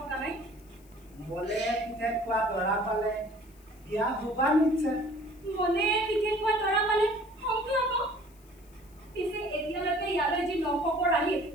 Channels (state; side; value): noise; left; hiss, 28 dB below the sound